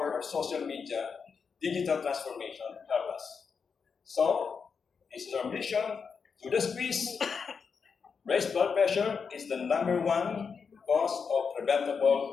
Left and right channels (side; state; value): right; quieter; 5.8 dB